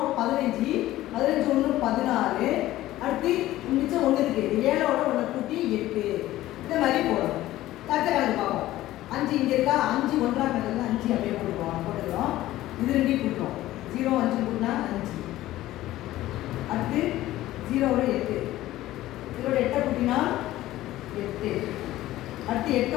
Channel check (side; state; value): right; quieter; 15.4 dB